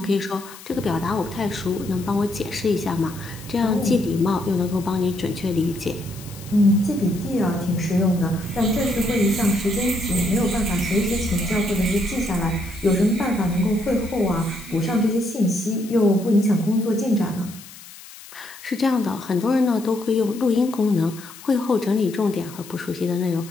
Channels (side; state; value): left; noise; hiss, 18 dB below the sound